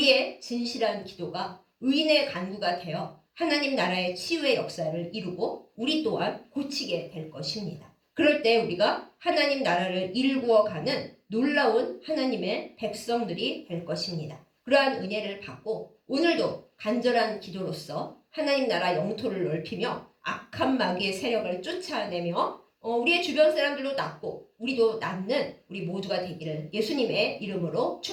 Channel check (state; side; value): identical; both; correlation 1.00